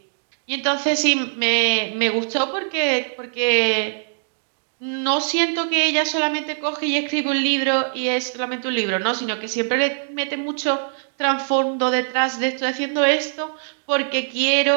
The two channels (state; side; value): silent; left; digital silence